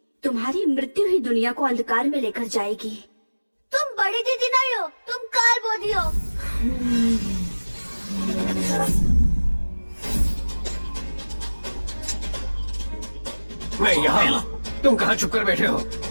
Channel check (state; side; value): inverted; both; correlation -1.00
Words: तुम्हारी मृत्यु ही दुनिया को अंधकार में लेकर जाएगी। तुम बड़ी दीदी नहीं हो, तुम काल बोधी हो। मैं यहाँ, तुम कहाँ छुप कर बैठे हो?